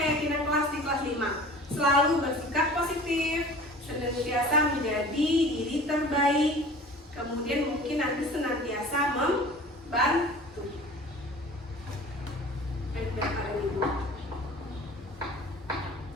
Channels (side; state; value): both; normal; correlation 0.43